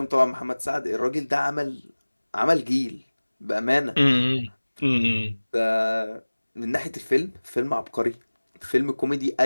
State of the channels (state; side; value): inverted; both; correlation -1.00